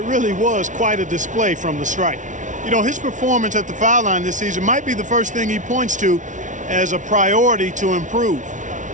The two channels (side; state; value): left; late; 0.37 ms